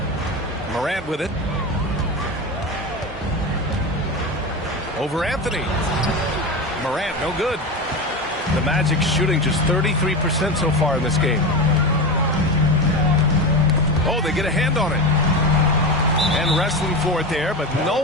Morant with it. Over Anthony. Morant, no good. The Magic shooting just 33% so far in this game. Oh, they get a hand on it. And wrestling for it there, but no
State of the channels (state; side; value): normal; both; correlation 0.22